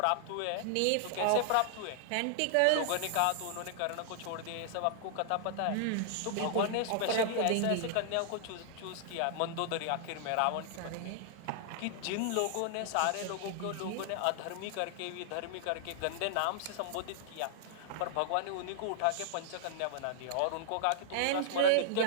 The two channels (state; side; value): different; both; correlation -0.01